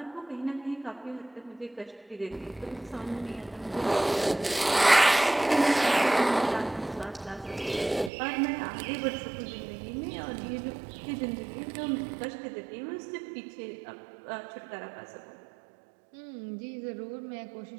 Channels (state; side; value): drops out; left; at 8.1 s